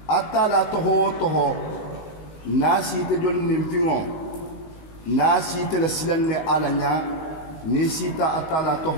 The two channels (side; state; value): right; late; 19 ms